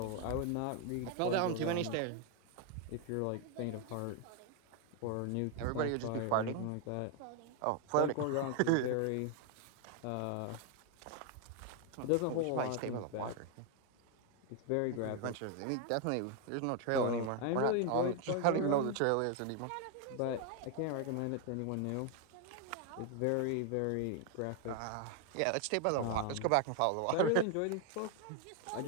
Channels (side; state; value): both; different; correlation 0.01